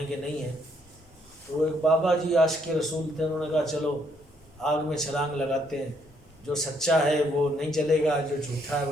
کہ نہیں ہیں. تو وہ ایک بابا جی عاشق رسول تھے. انہوں نے کہا چلو آگ میں چھلانگ لگاتے ہیں، جو سچا ہے وہ نہیں جلے گا، جو جھوٹا ہے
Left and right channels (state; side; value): normal; both; correlation 0.71